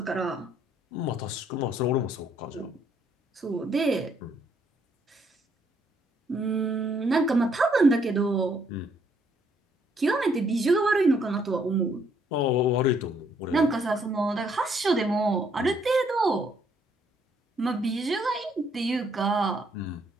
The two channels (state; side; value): normal; both; correlation 0.69